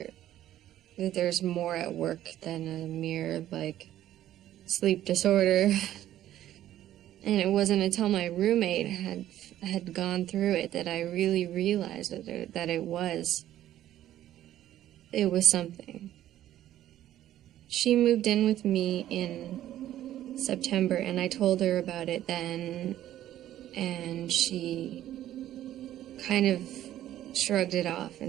there's more at work than a mere, like, sleep disorder. And it wasn't until my roommate had gone through it that I really realized that it was something. She moved in with me in September, and I told her about it then, and she kind of shrugged it off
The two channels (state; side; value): quieter; left; 12.7 dB